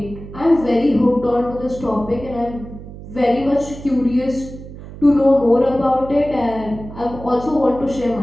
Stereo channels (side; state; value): right; noise; hum, 14 dB below the sound